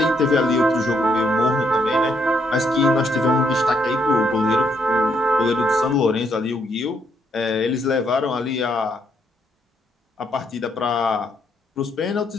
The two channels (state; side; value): normal; both; correlation 0.74